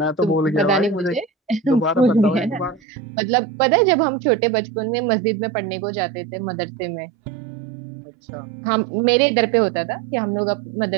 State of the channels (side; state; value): left; drops out; at 2.8 s